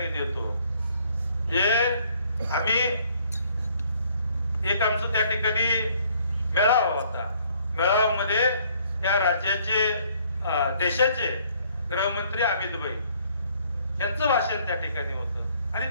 देतो. जे आम्ही एक आमचं त्या ठिकाणी मेळावा होता. मेळाव्यामध्ये या राज्याचे देशाचे गृहमंत्री अमित भाई यांचं भाषण त्या ठिकाणी होतं आणि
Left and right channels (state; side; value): inverted; both; correlation -0.63